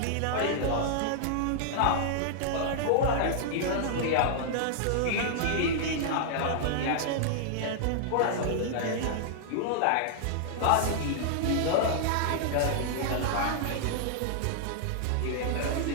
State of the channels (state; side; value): different; both; correlation -0.01